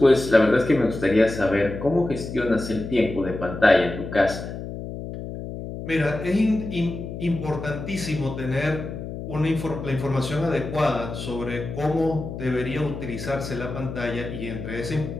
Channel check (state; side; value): noise; left; hum, 8 dB below the sound